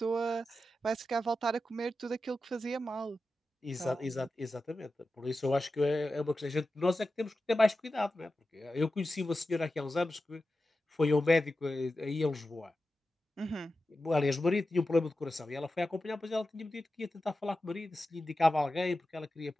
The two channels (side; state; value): both; normal; correlation 0.92